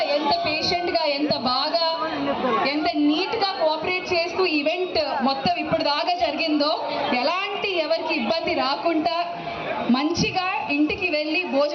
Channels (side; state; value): both; identical; correlation 1.00